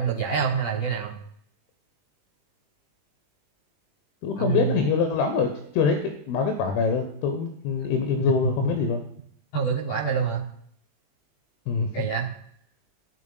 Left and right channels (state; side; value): late; right; 20 ms